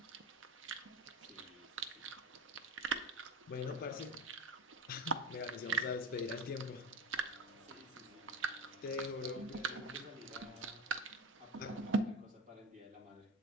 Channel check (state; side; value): normal; both; correlation 0.27